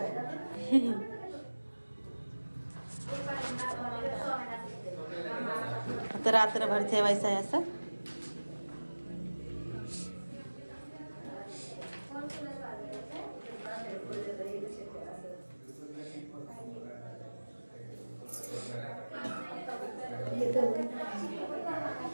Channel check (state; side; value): inverted; both; correlation -1.00